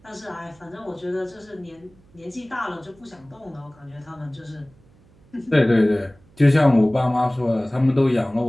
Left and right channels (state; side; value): noise; right; hum, 29 dB below the sound